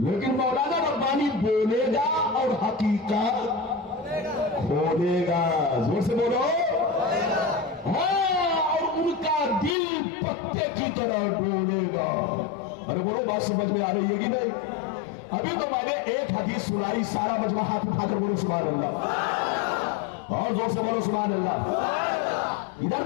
مولانا ربانی بولے گا اور حقیقت کھولے گا. زور سے بولو. ہاں، اور ان کا دل پتے کی طرح ڈولے گا. ارے بولو، بات سمجھ میں آ رہی ہے کہ نہیں؟ ابھی تو میں نے ایک حدیث سنائی، سارا مجمع ہاتھ اٹھا کر بولو سبحان اللہ، اور زور سے بولو سبحان اللہ. ادھر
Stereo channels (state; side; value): drops out; right; at 9.8 s